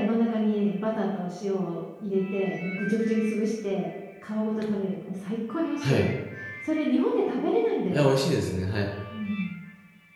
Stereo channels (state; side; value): identical; both; correlation 1.00